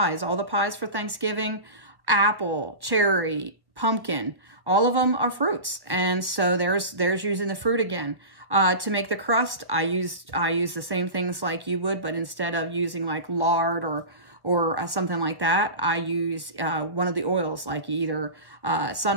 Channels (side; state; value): left; late; 1.1 ms